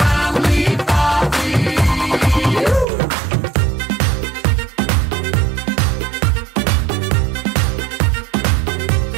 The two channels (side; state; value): left; drops out; at 2.9 s